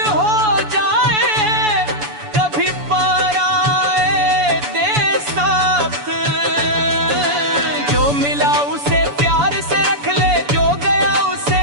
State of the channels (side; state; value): left; late; 7.0 ms